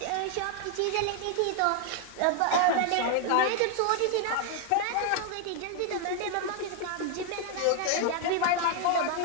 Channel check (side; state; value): both; different; correlation 0.01